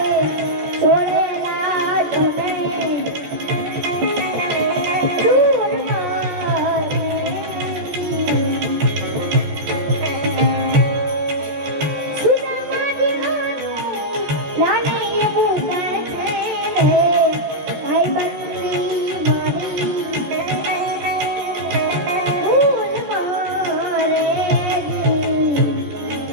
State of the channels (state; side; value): late; left; 14 ms